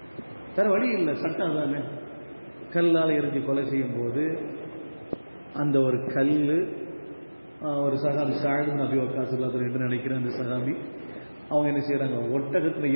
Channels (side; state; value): both; inverted; correlation -1.00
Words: வேற வழி இல்லை, சட்டம் தானே. கல்லால் எரிஞ்சு கொலை செய்யும் போது அந்த ஒரு கல், ஒரு சகாபி ஸஅத் இப்னு அபீ வக்காஸ் என்று நினைக்கிறேன், அந்த சகாபி அவங்க என்ன செய்யறாங்க, ஒட்டகத்தில்